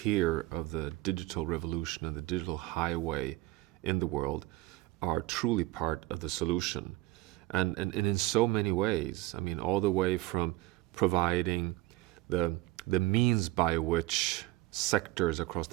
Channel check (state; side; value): quieter; left; 18.0 dB